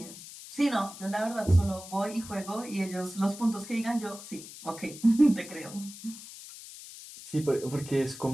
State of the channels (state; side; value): noise; left; hiss, 14 dB below the sound